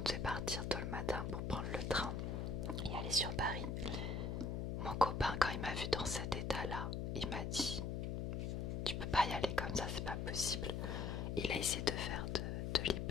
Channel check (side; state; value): left; noise; hum, 1 dB below the sound